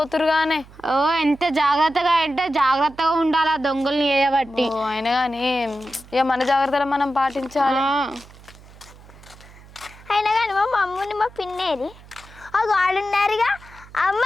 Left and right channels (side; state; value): right; noise; hum, 22 dB below the sound